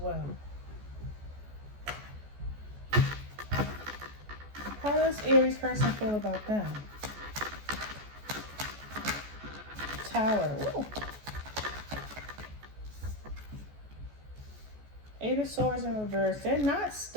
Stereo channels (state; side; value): late; left; 14 ms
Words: How does Aries person feel about them? Tower. Ooh. Eight of Swords in reverse. They're not